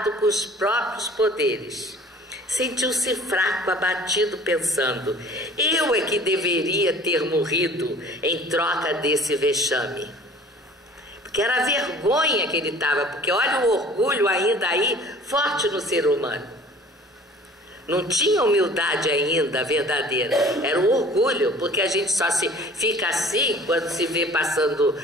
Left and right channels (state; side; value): normal; both; correlation 0.48